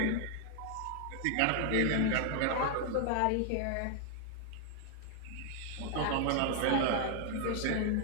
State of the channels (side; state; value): both; different; correlation 0.00